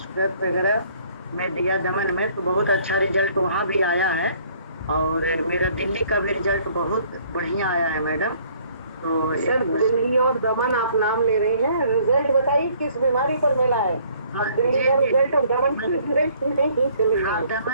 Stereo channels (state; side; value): inverted; both; correlation -0.60